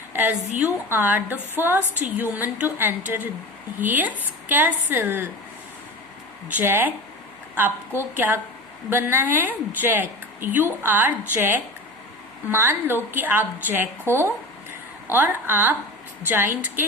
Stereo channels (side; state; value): both; normal; correlation 0.30